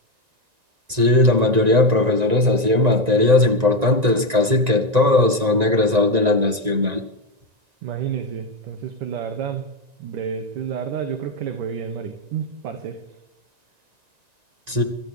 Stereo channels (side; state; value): left; late; 1.9 ms